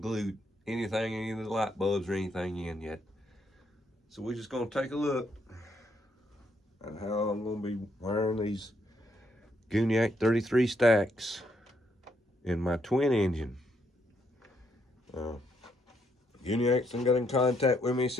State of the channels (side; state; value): both; normal; correlation 0.75